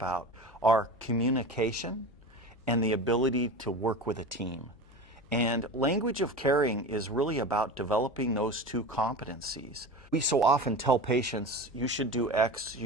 are communication and the ability to work with a team. And language of caring is really about developing those two competencies. We so often tell patients, you should do X,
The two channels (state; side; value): noise; left; hum, 27 dB below the sound